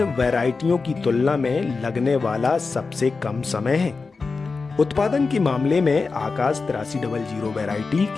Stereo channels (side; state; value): right; quieter; 4.3 dB